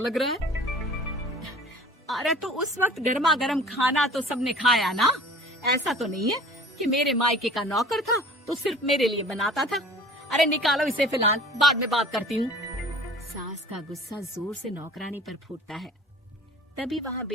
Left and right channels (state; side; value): normal; both; correlation 0.46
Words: रहा है? अरे तो उस वक्त गर्मा गर्म खाना तो सबने खाया ना। ऐसा तो नहीं है कि मेरे मायके का नौकर था तो सिर्फ मेरे लिए बनाता था। अरे निकालो इसे, फिलहाल बाद में बात करती हूँ। सास का गुस्सा जोर से नौकरानी पर फूटता है। तभी वहाँ